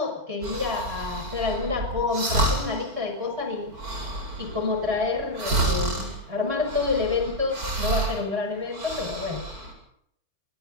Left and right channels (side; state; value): left; late; 4.5 ms